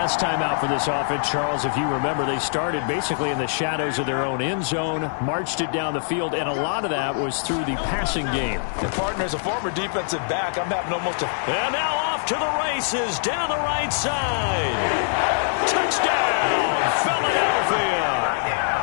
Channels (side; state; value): right; silent; digital silence